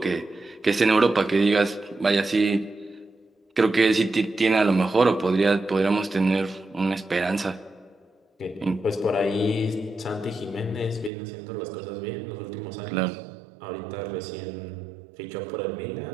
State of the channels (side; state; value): left; drops out; at 11.1 s